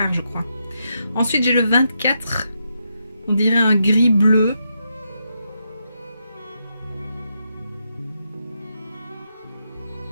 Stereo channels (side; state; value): both; inverted; correlation -0.82